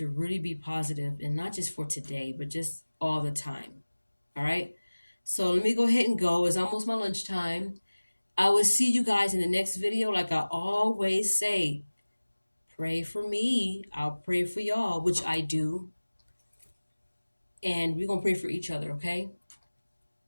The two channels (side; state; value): both; inverted; correlation -1.00